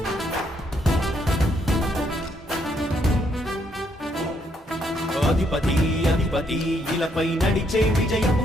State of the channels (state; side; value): normal; both; correlation 0.73